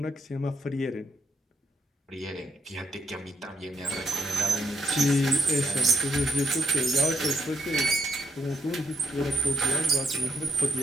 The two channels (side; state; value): both; normal; correlation 0.77